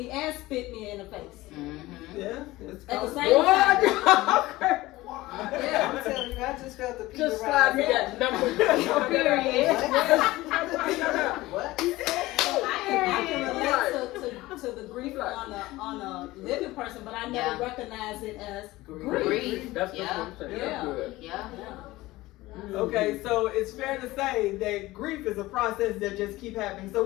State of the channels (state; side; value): quieter; right; 18.6 dB